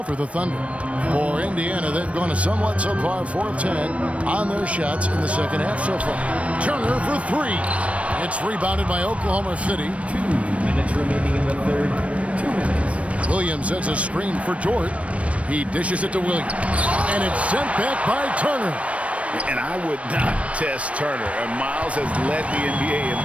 for the Thunder. For Indiana, they've gone a somewhat subpar 4 of 10 on their shots in the second half so far. Turner for 3. It's rebounded by Oklahoma City. 2 minutes remaining in the third. 2 minutes. Williams sets a screen for Dort. He dishes it to Williams. And it's sent back by Turner. And I would not test Turner. And Miles has led the NBA in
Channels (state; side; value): late; left; 0.063 ms